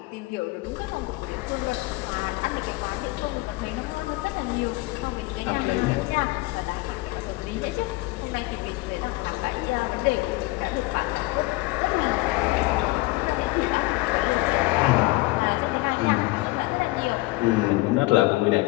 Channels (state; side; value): quieter; right; 21.5 dB